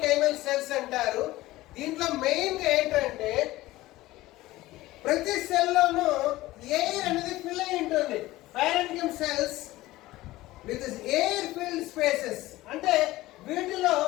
సెల్స్ అంటారు. దీంట్లో మెయిన్ గా ఏంటంటే ప్రతి సెల్ లోనూ ఎయిర్ అనేది ఫిల్ అయి ఉంటుంది. Parenchyma cells with air filled spaces, అంటే వీటిలో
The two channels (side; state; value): right; quieter; 17.6 dB